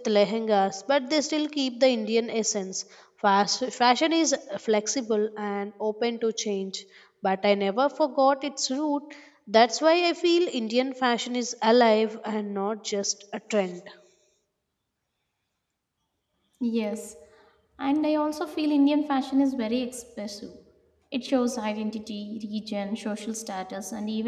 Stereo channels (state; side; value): identical; both; correlation 1.00